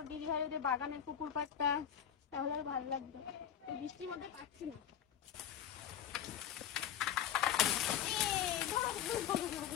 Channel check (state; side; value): quieter; right; 9.4 dB